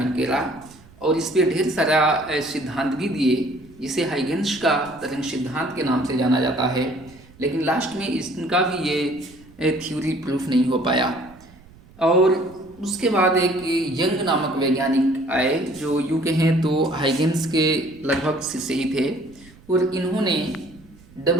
किया और इस पर ढेर सारा सिद्धांत भी दिए, जिसे हाइगेंस का तरंग सिद्धांत के नाम से जाना जाता है। लेकिन लास्ट में इनका भी ये थ्योरी प्रूफ नहीं हो पाया। और उसके बाद एक यंग नामक वैज्ञानिक आए जो यूँ कहें तो हाइगेंस के लगभग शिष्य ही थे, और इन्होंने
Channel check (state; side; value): noise; right; rumble, 25 dB below the sound